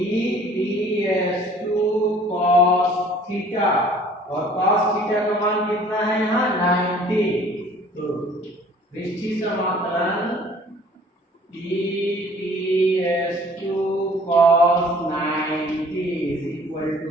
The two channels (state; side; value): normal; both; correlation 0.53